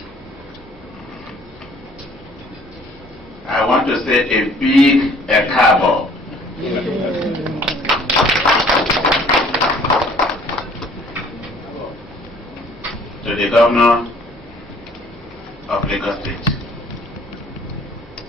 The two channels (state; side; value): normal; both; correlation 0.56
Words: I want to say a big ekabo to the Governor of Lagos State.